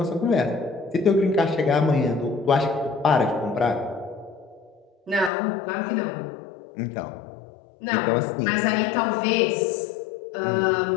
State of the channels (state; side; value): drops out; right; at 5.3 s